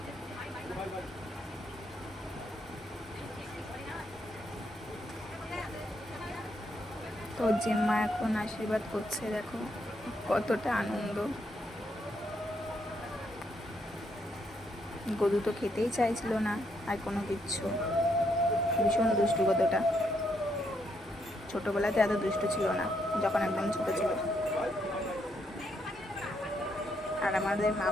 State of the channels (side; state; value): both; normal; correlation 0.76